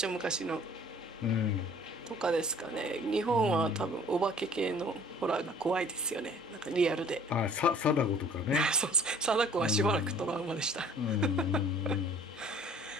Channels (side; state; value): both; normal; correlation 0.52